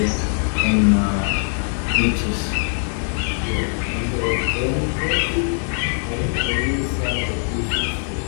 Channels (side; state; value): right; silent; 55 dB below the other